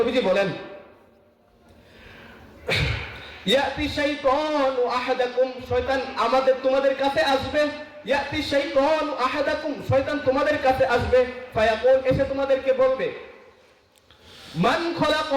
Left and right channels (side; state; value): both; identical; correlation 1.00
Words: বলেন, ইয়াতি শাইতানু আহাদাকুম, শয়তান তোমাদের কাছে আসবে, ইয়াতি শাইতানু আহাদাকুম, শয়তান তোমাদের কাছে আসবে, ফায়াকুল, এসে তোমাদেরকে বলবে, মান